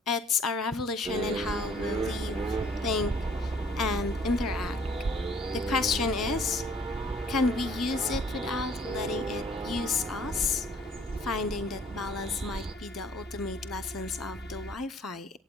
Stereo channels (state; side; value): normal; both; correlation 0.58